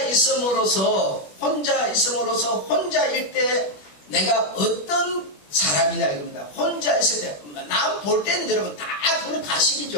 있음으로써 혼자일 때 내가 어떤 사람이냐 이겁니다. 혼자 있을 때, 남 볼 때는 여러분 다 그거는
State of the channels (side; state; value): right; late; 21 ms